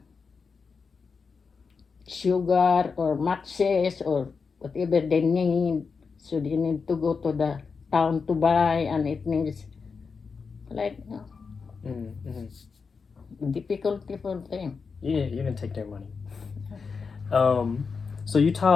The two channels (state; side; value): quieter; right; 5.2 dB